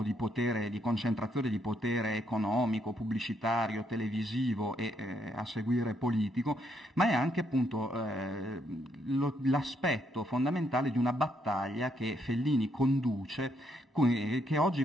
di potere, di concentrazione di potere economico, pubblicitario, televisivo e a seguire politico, ma è anche appunto l'aspetto fondamentale di una battaglia che Fellini conduce, che oggi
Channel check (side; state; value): both; normal; correlation 0.74